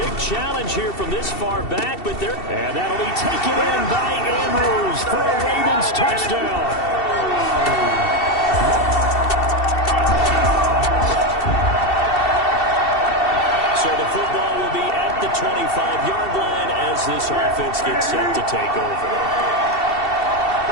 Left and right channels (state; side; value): late; right; 2.7 ms